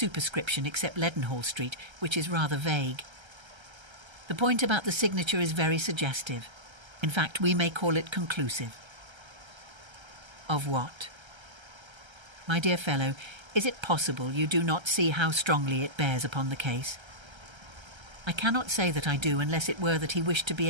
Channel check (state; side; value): late; left; 1.3 ms